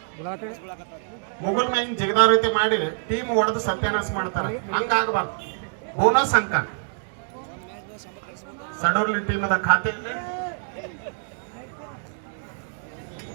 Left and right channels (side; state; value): left; silent; digital silence